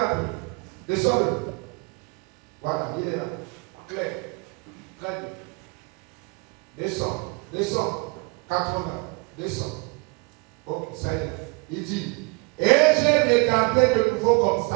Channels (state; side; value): quieter; left; 30.0 dB